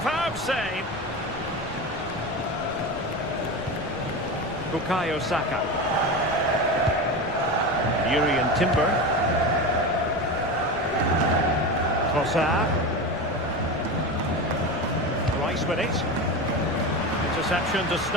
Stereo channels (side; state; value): left; noise; rumble, 16 dB below the sound